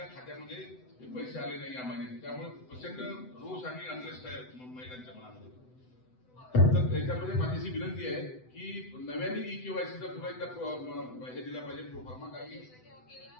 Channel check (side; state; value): right; late; 7.9 ms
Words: खात्यामध्ये पैसे आले नाही या महिन्यात. त्यामुळे प्रचंड रोष आणि अनरेस्ट आहे महिलांच्या मनामध्ये. तर याच्यामध्ये माझी विनंती आहे की नव्याने केवायसीचा पुन्हा एकदा हे दिला पाहिजे प्रोफार्मा. काही